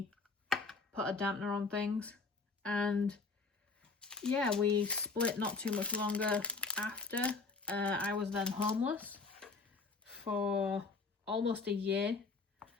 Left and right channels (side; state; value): right; quieter; 4.2 dB